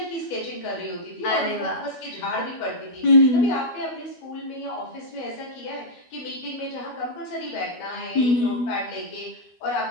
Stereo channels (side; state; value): right; late; 12 ms